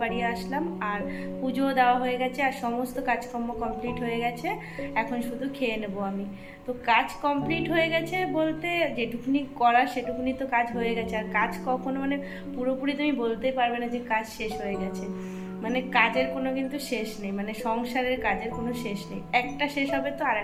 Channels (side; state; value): both; identical; correlation 1.00